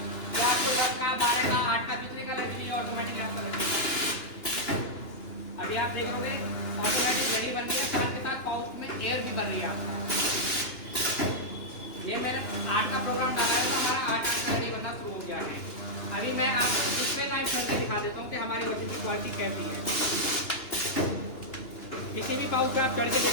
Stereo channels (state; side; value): late; right; 2.9 ms